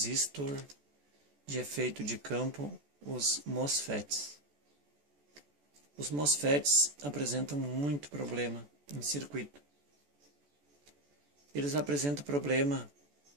de efeito de campo, os MOSFETs. Os MOSFETs apresentam muito problema em circuito. Eles apresentam problema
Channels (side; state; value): left; late; 14 ms